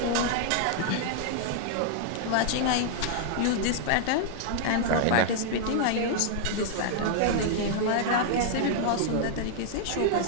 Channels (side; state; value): both; different; correlation -0.01